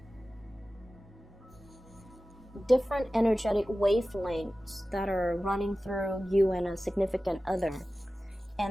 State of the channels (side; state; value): both; normal; correlation 0.96